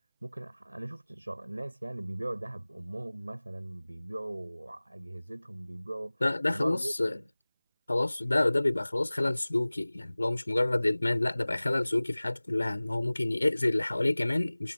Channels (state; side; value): inverted; both; correlation -0.99